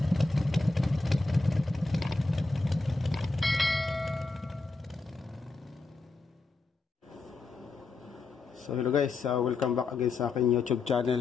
So hello guys, welcome back again sa aking YouTube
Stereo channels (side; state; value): right; quieter; 3.6 dB